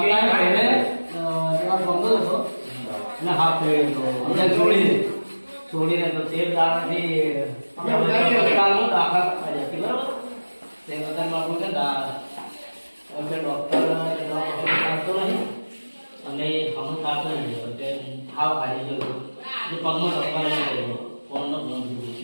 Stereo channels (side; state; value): both; inverted; correlation -1.00